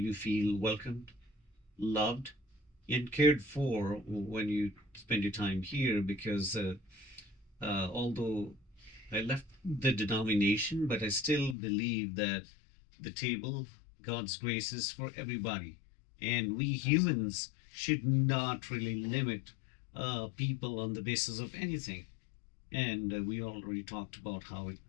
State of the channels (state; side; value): drops out; right; at 11.6 s